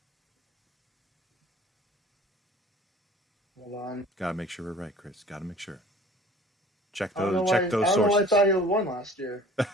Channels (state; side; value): normal; both; correlation 0.47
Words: Hold on. gotta make sure we're right, Chris. Gotta make sure. Check I don't know those why. check I those don't know why I sources. thought he won last year.